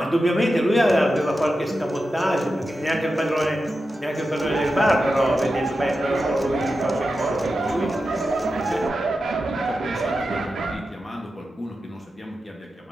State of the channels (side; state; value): both; normal; correlation 0.91